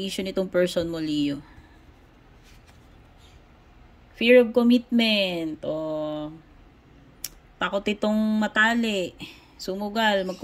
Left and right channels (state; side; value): identical; both; correlation 1.00